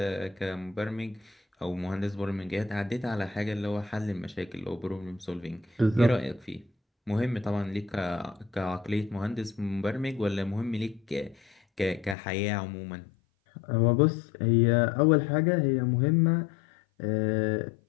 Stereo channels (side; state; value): right; drops out; at 12.2 s